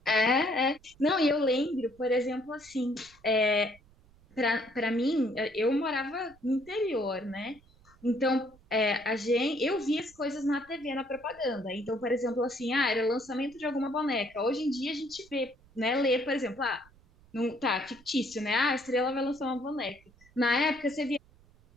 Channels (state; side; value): noise; right; rumble, 28 dB below the sound